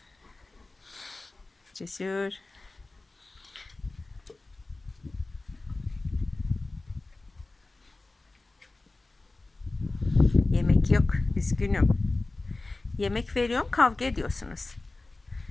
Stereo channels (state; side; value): quieter; right; 3.2 dB